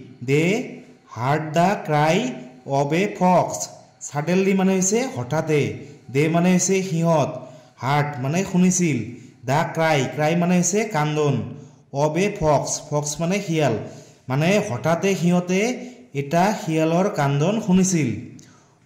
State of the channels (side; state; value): both; identical; correlation 1.00